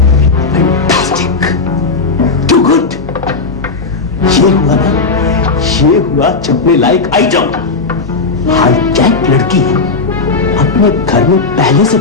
Too good. ये हुआ ना, ये हुआ चपने लायक आइटम। हाईजैक लड़की अपने घर में पहले से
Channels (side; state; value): right; quieter; 4.1 dB